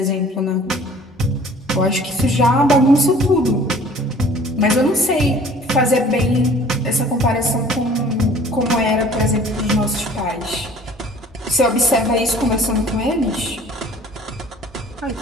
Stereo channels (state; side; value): normal; both; correlation 0.50